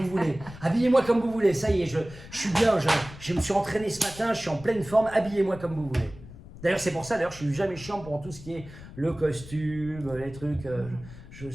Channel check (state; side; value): noise; left; rumble, 16 dB below the sound